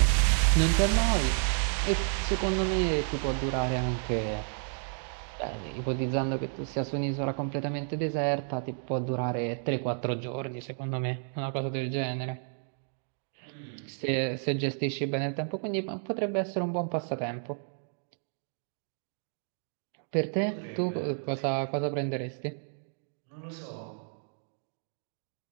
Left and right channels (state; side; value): silent; left; 57 dB below the other